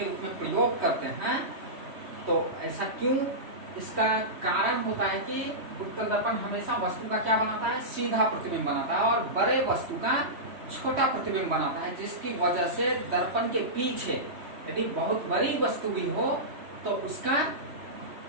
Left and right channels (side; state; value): left; late; 3.1 ms